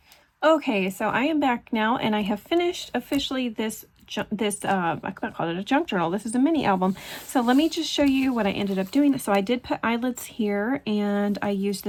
Okay, so I am back now, and I have finished officially this I can't call it a junk journal. This is a mini album. So let me just show you what I ended up doing. So I did put eyelets here, and I used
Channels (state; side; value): identical; both; correlation 1.00